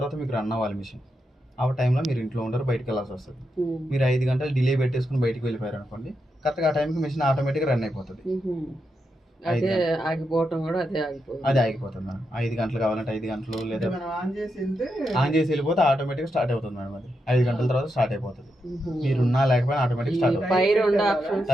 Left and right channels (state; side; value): normal; both; correlation 0.85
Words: మీకు రన్ అవ్వాలి మిషన్. ఆ టైంలో మీరు ఇంట్లో ఉండరు, బయటకు వెళ్ళాల్సి వస్తుంది. మీరు 5 గంటలు డిలే పెట్టేసుకుని బయటకు వెళ్ళిపోయారు అనుకోండి, కరెక్ట్గా ఆ టైంకి మిషన్ ఆటోమేటిక్గా రన్ అయిపోతుంది. అదే ఆగిపోవటం కూడా అదే ఆగిపోతుంది మేడం. 5 గంటలు కావాలంటే 5 గంటలు, లేదా ఆన్ చేసి వెళ్ళిపోతే ఆటోమేటిక్గా స్టార్ట్ అవుతుంది మేడం. అది 5 గంటల తర్వాత స్టార్ట్ అయిపోతుంది. మీరు ఉన్నా లేకపోయినా ఆటోమేటిక్ స్టార్ట్ అవుతుంది.